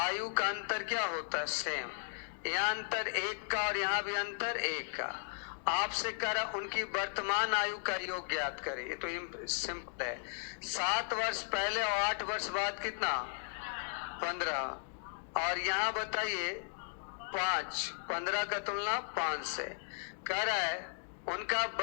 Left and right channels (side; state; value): right; silent; digital silence